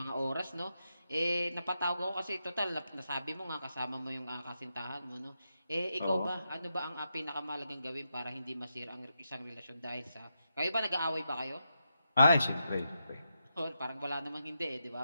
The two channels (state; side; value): inverted; both; correlation -0.85